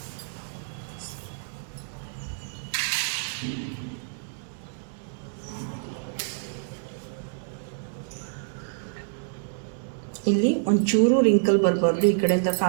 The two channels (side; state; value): left; silent; digital silence